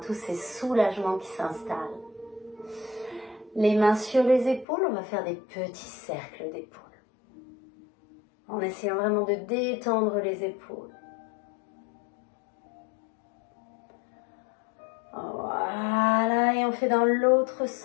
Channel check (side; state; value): right; drops out; at 4.7 s